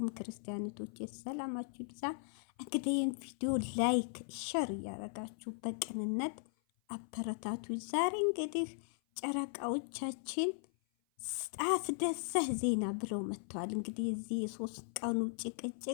ክርስቲያኖቶቼ ሰላማችሁ ይብዛ። እንግዲህ ይህን ቪዲዮ ላይክ ሸር እያደረጋችሁ በቅንነት አበረታቱ። ዛሬ እንግዲህ ጨረቃዎቻችን አስደሳች ዜና ብለው መጥተዋል። እንግዲህ የዚህ የሶስት ቀኑ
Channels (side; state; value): right; silent; 52 dB below the other